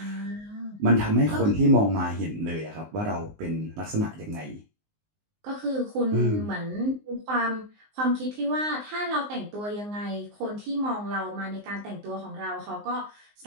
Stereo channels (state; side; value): late; left; 19 ms